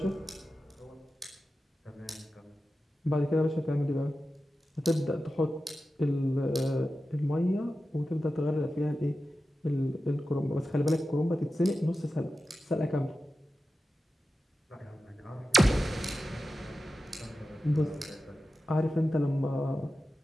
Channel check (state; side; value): normal; both; correlation 0.93